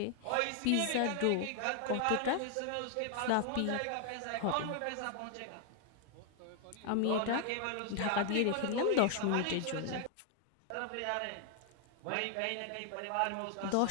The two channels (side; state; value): both; different; correlation 0.00